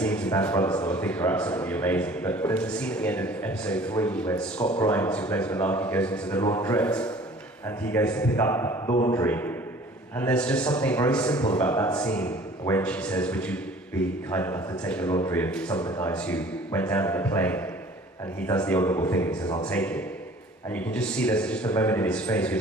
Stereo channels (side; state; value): both; normal; correlation 0.49